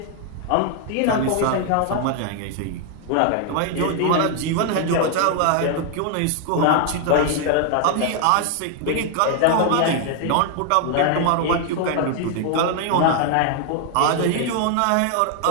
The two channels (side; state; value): both; different; correlation 0.00